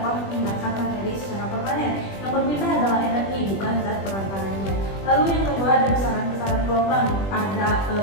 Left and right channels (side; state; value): right; late; 20 ms